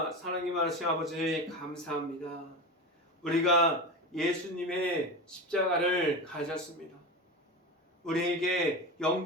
사랑이 많으신 아버지 감사합니다. 우리가 예수님의 십자가를 가졌습니다. 우리에게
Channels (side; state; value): both; normal; correlation 0.24